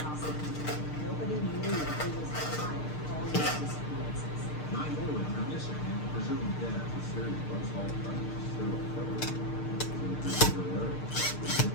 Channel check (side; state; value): right; late; 6.6 ms